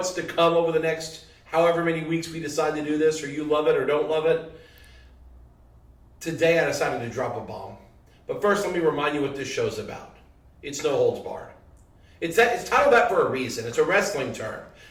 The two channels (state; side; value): identical; both; correlation 1.00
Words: to come over the next however many weeks we decide to do this, or you love it or don't love it. Today I decided to drop a bomb. But first, let me remind you what this show's about. It's no holds barred. It's titled that for a reason. It's a wrestling term.